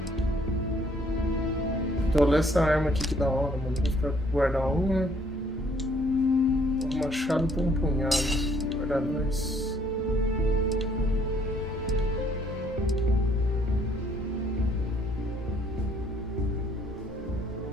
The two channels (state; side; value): normal; both; correlation 0.64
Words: Então, olha essa arma aqui que da hora, mano. Vou ficar guardar uma. Um machado por um punhado. Guardar dois.